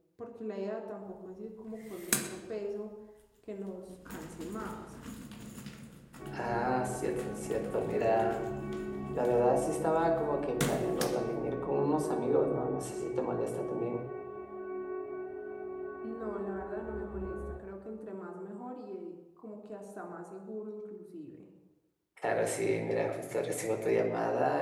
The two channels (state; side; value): identical; both; correlation 1.00